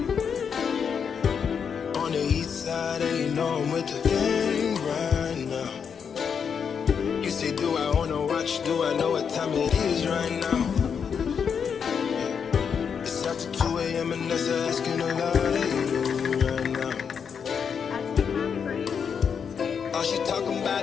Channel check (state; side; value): quieter; right; 6.8 dB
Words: On the east side, and you know I'm with the gang right now. You say, do I wanna watch? Do I know what time it is right now? Yeah. It's after 2 a.m. and that's asking a lot of you right now. All she talking about